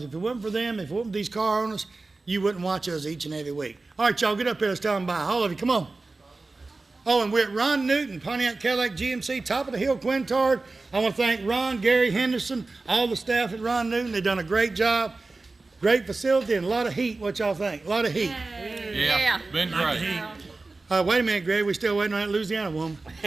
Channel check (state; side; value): quieter; left; 3.5 dB